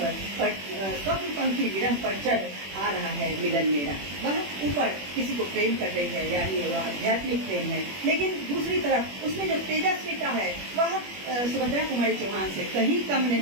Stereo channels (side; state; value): left; late; 21 ms